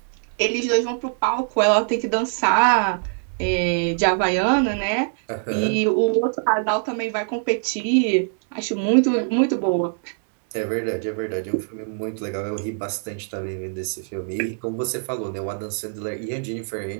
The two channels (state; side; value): silent; left; digital silence